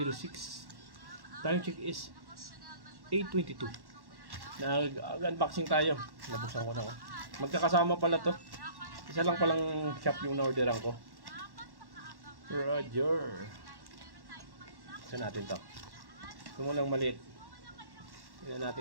6. Time check is 8:22. Nag-unboxing tayo. Nabuksan ko na ako. Magkakasama pala to. Isa lang palang shop yung na-orderan ko. Roger. Buksan natin to. Ito mo lang maliit. Tingnan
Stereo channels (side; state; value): left; late; 1.1 ms